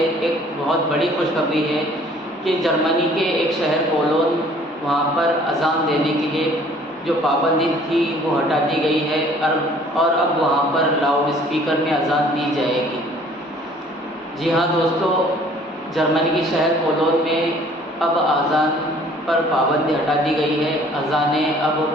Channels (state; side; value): normal; both; correlation 0.55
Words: एक बहुत बड़ी खुशखबरी है कि जर्मनी के एक शहर कोलोन, वहाँ पर अज़ान देने के लिए जो पाबंदी थी वो हटा दी गई है और अब वहाँ पर लाउड स्पीकर में अज़ान दी जाएगी। जी हाँ दोस्तों, जर्मनी के शहर कोलोन में अब अज़ान पर पाबंदी हटा दी गई है। अज़ानें अब